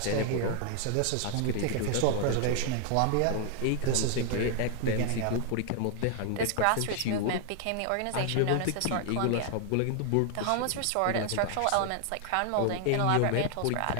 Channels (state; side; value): different; both; correlation 0.00